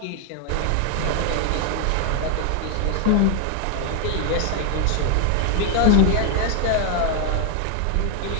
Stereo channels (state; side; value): different; both; correlation 0.00